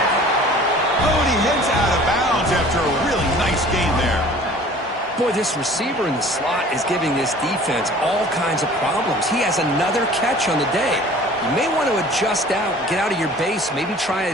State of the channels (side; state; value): both; normal; correlation 0.47